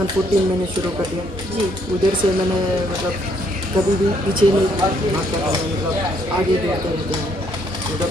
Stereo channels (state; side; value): normal; both; correlation 0.69